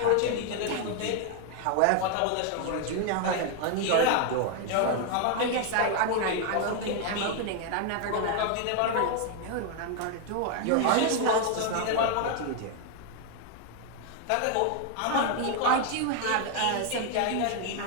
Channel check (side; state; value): both; different; correlation 0.00